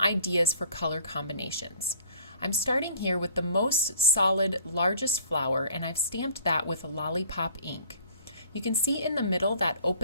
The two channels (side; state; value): both; inverted; correlation -0.53